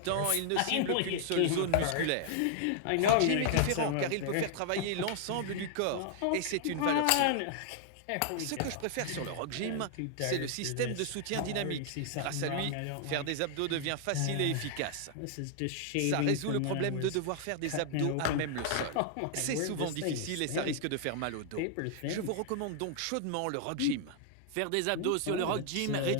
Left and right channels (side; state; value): both; different; correlation 0.00